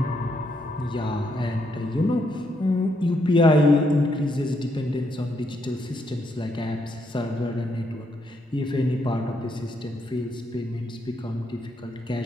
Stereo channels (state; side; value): normal; both; correlation 0.77